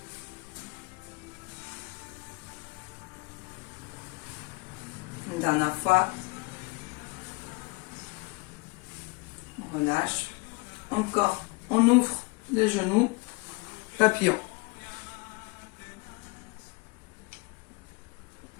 Une dernière fois. On relâche. Encore, on ouvre les genoux, papillon.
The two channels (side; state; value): right; quieter; 28.3 dB